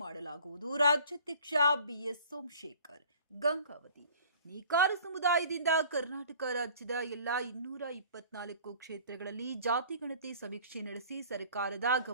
ಮಾಡಲಾಗುವುದು. ರಾಜ್ಯಾಧ್ಯಕ್ಷ ಬಿಎಸ್ ಸೋಮಶೇಖರ್. ಗಂಗಾವತಿ. ನೇಕಾರ ಸಮುದಾಯದಿಂದ ಕರ್ನಾಟಕ ರಾಜ್ಯದ ಎಲ್ಲ 224 ಕ್ಷೇತ್ರಗಳಲ್ಲಿ ಜಾತಿಗಣತಿ ಸಮೀಕ್ಷೆ ನಡೆಸಿ ಸರ್ಕಾರದ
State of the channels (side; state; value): both; inverted; correlation -0.49